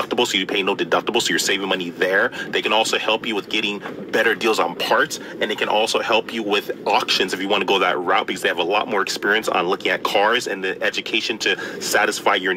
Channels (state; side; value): identical; both; correlation 1.00